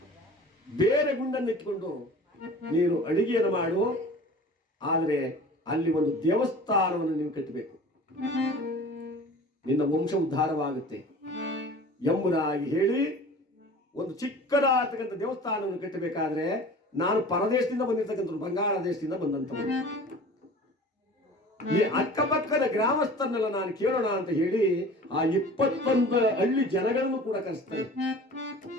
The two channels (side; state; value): both; normal; correlation 0.42